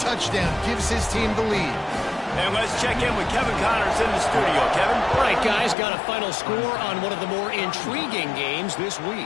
gives his team the lead. And let's check in with Kevin Connors in the studio. Kevin? All right, guys, got a final score on one of the more intriguing games this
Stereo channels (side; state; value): right; drops out; at 5.8 s